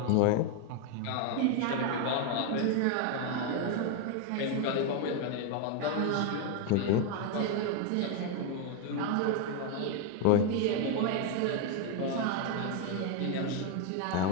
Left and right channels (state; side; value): different; both; correlation 0.01